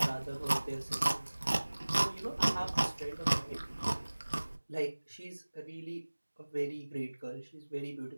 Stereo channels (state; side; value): inverted; both; correlation -1.00